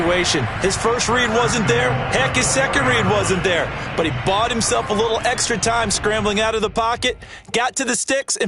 His first read wasn't there. Heck, his second read wasn't there. But he bought himself a little extra time scrambling out of the pocket, got to the sticks,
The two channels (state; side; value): identical; both; correlation 1.00